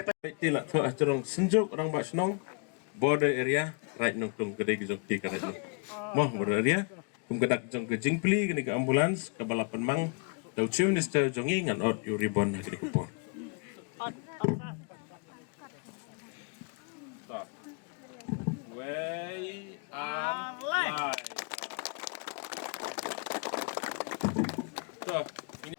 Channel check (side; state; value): right; quieter; 35.6 dB